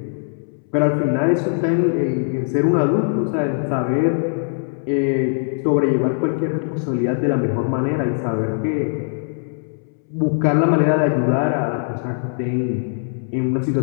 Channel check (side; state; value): right; silent; 65 dB below the other